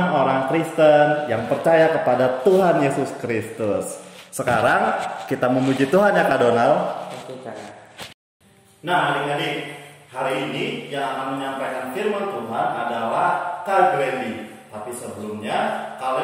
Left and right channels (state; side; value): identical; both; correlation 1.00